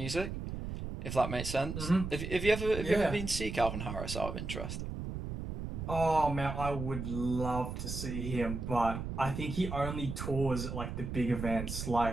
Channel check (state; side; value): noise; right; rumble, 5 dB below the sound